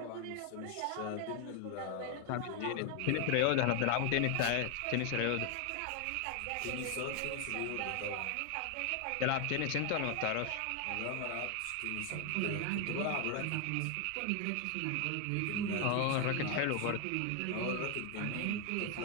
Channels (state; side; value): different; both; correlation 0.01